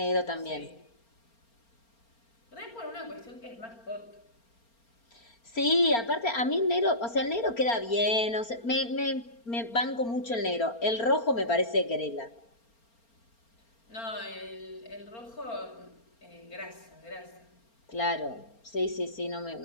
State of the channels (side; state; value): right; late; 4.3 ms